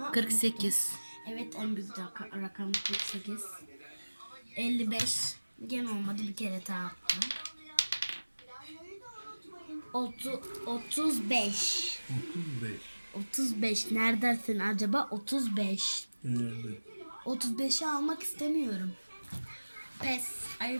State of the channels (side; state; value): both; inverted; correlation -1.00